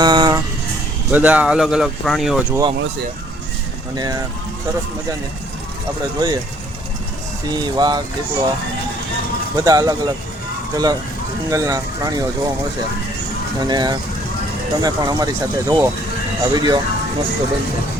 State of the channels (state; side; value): normal; both; correlation 0.61